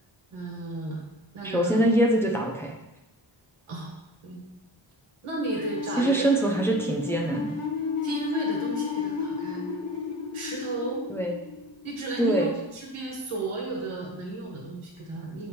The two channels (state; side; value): normal; both; correlation 0.41